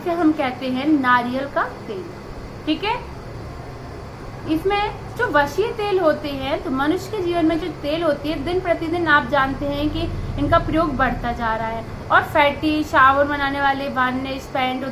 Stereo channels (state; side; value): identical; both; correlation 1.00